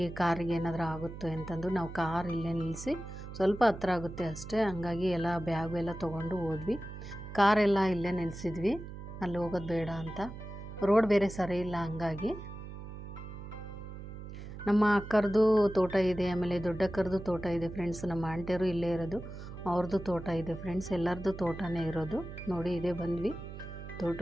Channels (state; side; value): noise; right; hum, 11 dB below the sound